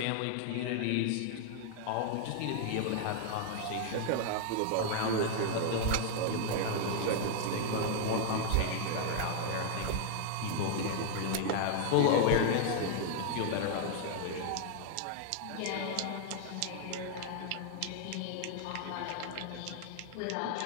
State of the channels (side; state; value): both; different; correlation 0.00